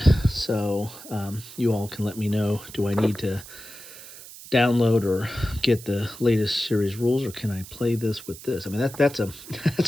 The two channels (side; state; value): right; noise; hiss, 16 dB below the sound